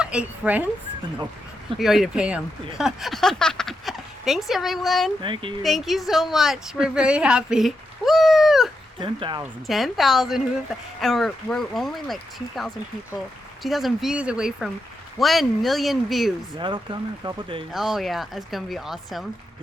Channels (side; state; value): both; normal; correlation 0.85